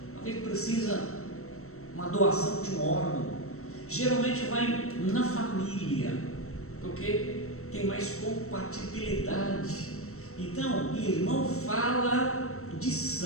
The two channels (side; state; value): right; late; 0.63 ms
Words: Às vezes precisa uma doação de um órgão, geralmente vai na família, porque tem mais compatibilidade. Então, irmão fala de